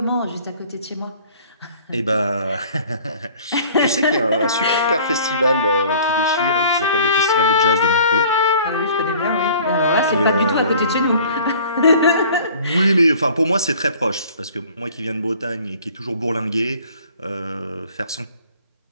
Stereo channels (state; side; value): inverted; both; correlation -0.50